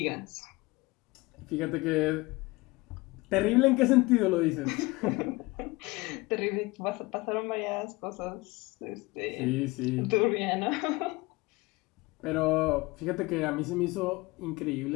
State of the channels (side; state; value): right; quieter; 22.7 dB